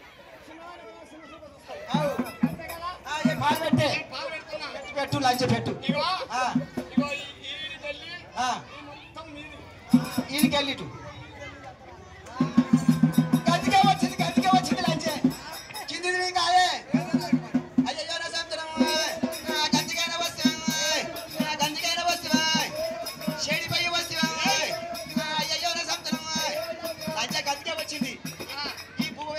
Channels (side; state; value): both; identical; correlation 1.00